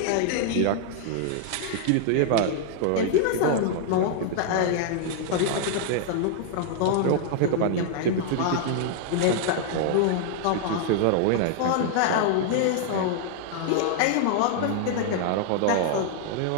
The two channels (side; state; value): both; different; correlation -0.01